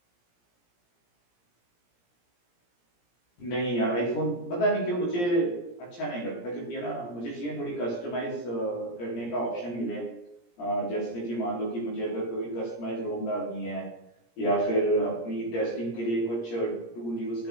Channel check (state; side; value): late; right; 17 ms